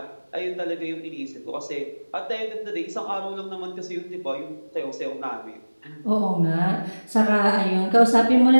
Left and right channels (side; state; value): both; inverted; correlation -1.00